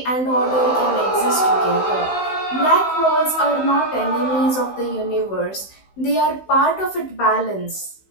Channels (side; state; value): right; late; 16 ms